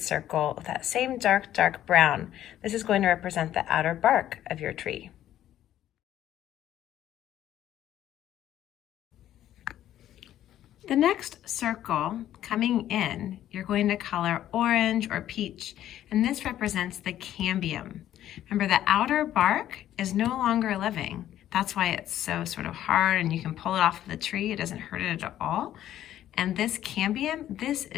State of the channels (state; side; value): quieter; right; 12.1 dB